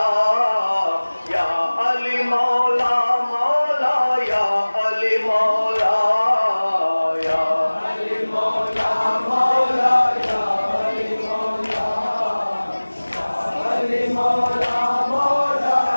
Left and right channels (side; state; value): both; inverted; correlation -1.00